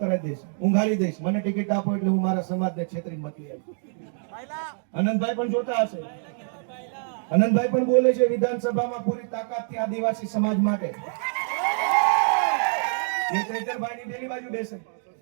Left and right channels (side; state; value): left; silent; 61 dB below the other